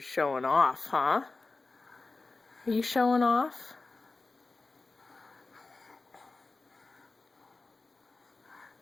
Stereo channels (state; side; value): quieter; right; 3.7 dB